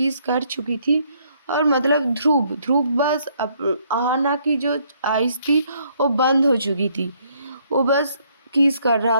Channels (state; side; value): inverted; both; correlation -0.68